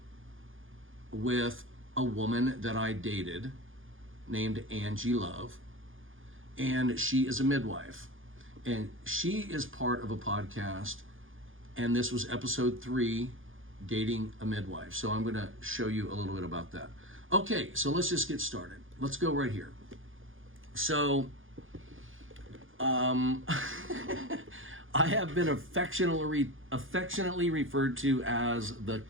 with a woman that I dated named Angie Love. And she is a midwife. And she is part of a podcast, and this was episode 3, Dating a Midwife. So I'm going to show you a little bit about that. Okay, so let's just get started. Let's go right here. So, I have been affectionately referred to as the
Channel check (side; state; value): left; late; 0.58 ms